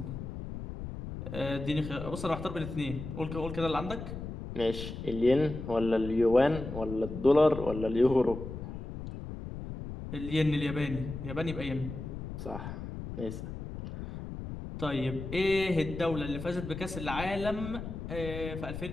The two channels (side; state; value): left; noise; rumble, 8 dB below the sound